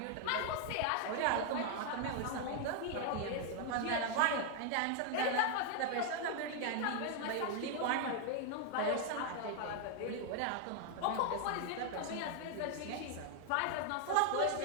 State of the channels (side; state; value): both; different; correlation 0.00